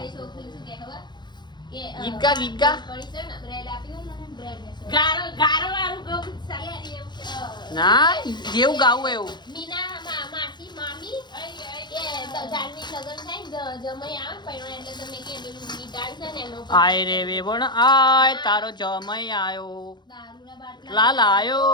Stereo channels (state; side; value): late; right; 0.21 ms